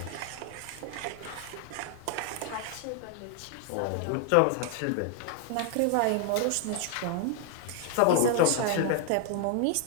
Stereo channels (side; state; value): both; different; correlation 0.00